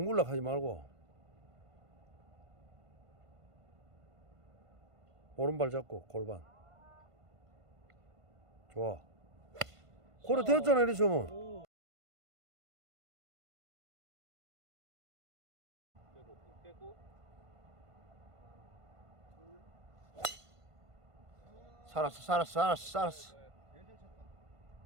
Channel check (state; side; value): late; left; 1.5 ms